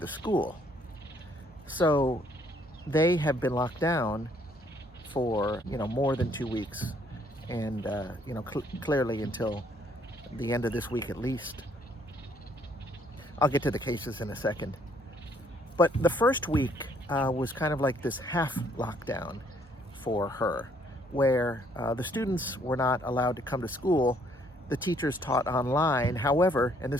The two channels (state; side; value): normal; both; correlation 0.66